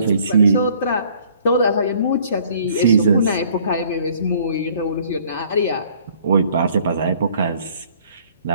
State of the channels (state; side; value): inverted; both; correlation -0.58